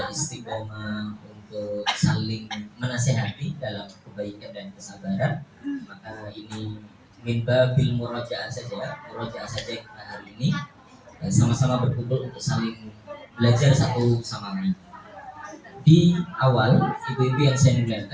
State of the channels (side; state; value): both; identical; correlation 1.00